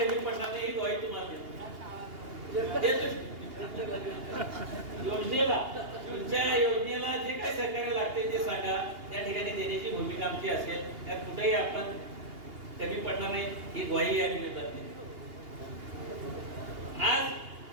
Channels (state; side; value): late; left; 2.8 ms